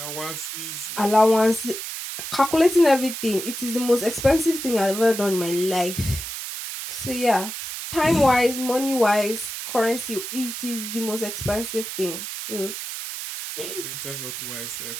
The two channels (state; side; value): noise; right; hiss, 7 dB below the sound